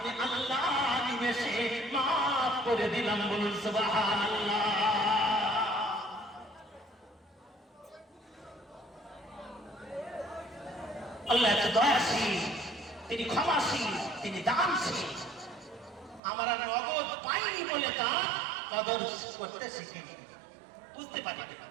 আল্লাহ নিমেষে মাফ করে দিলাম। বলুন সুবহানাল্লাহ। আল্লাহ এত দয়াশীল, তিনি ক্ষমাশীল, তিনি দানশীল। আমরা নগদ পাইনি বলে তার কদর করতে শিখিনি, বুঝতে পারি।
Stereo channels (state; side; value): drops out; left; at 16.2 s